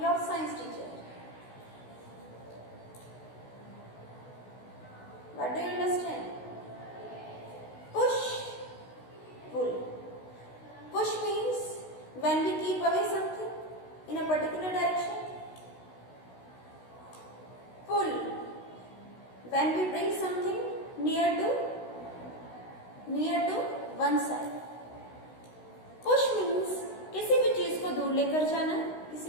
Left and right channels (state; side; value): late; right; 16 ms